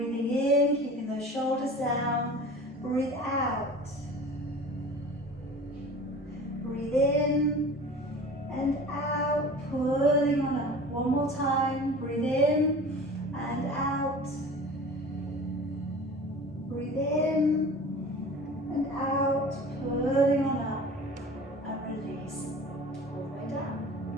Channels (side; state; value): both; normal; correlation 0.40